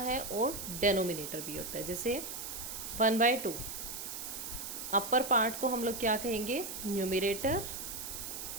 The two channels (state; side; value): noise; right; hiss, 7 dB below the sound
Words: और डेनोमिनेटर भी होता है। जैसे 1/2 अपर पार्ट को हम लोग क्या कहेंगे, न्यूमिरेटर,